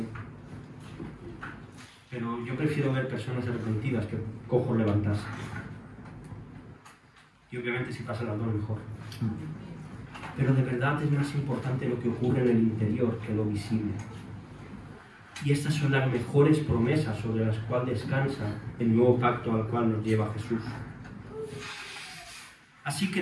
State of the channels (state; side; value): identical; both; correlation 1.00